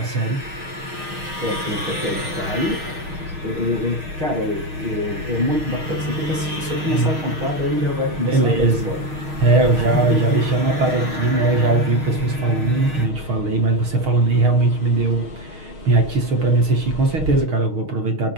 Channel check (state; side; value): late; left; 6.4 ms